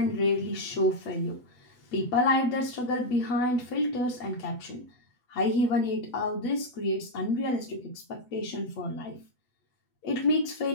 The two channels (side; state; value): right; late; 8.0 ms